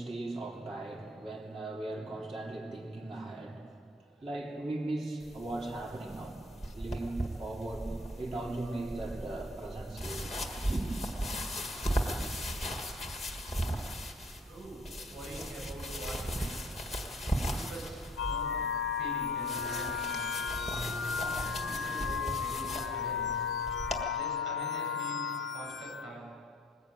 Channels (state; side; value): normal; both; correlation 0.54